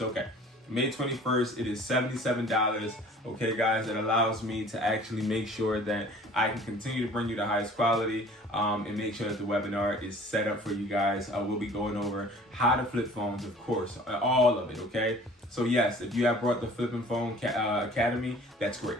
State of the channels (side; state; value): both; normal; correlation 0.49